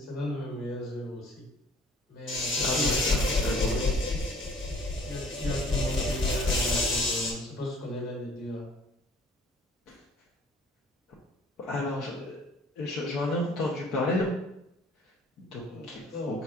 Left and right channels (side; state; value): both; normal; correlation 0.54